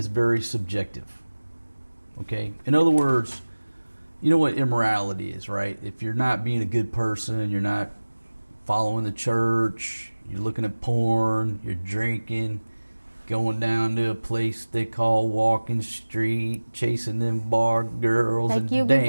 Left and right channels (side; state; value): both; inverted; correlation -1.00